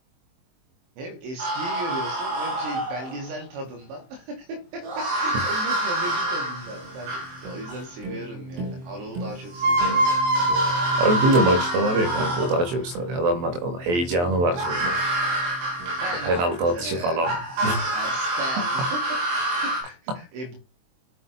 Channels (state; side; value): late; left; 23 ms